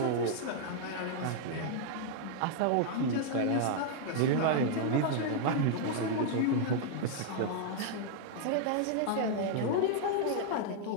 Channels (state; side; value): different; both; correlation -0.01